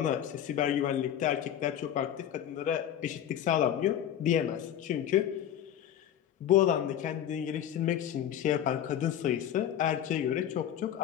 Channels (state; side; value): quieter; right; 10.3 dB